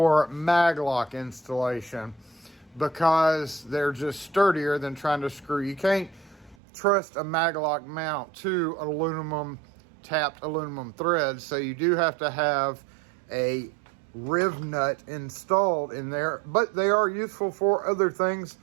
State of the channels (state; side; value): drops out; left; at 6.6 s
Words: maglock installation because they're just sturdier than trying to screw. You can't trust a maglock mount to tapped aluminum thread, so you do have to have a riv nut installed in there, but they are useful for other things.